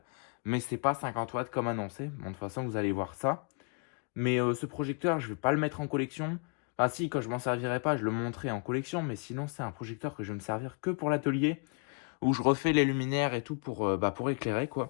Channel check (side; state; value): right; quieter; 38.3 dB